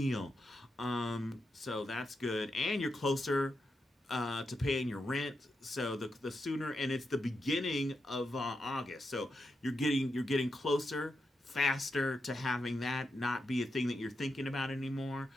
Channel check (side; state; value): both; normal; correlation 0.86